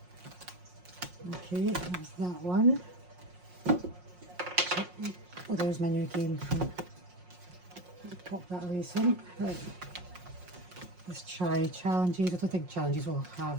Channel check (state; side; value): late; left; 5.6 ms